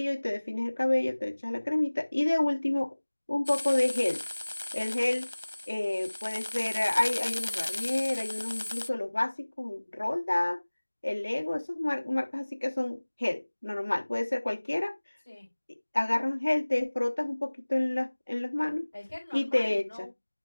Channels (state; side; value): inverted; both; correlation -1.00